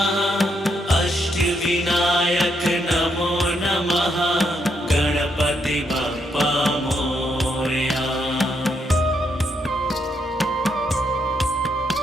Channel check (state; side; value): normal; both; correlation 0.77